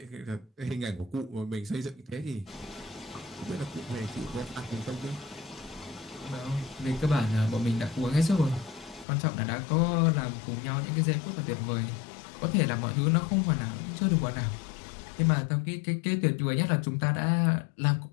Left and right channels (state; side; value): drops out; right; at 9.1 s